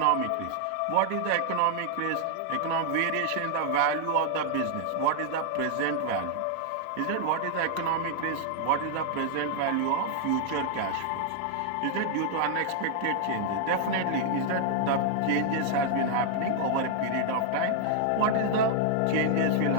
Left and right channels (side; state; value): both; different; correlation 0.00